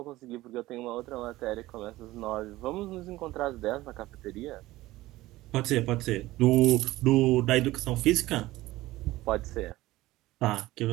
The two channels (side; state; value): left; quieter; 17.5 dB